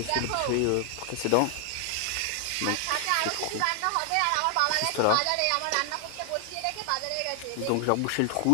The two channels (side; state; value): both; different; correlation 0.00